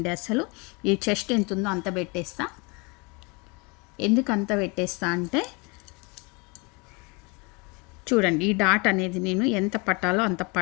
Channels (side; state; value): right; quieter; 29.4 dB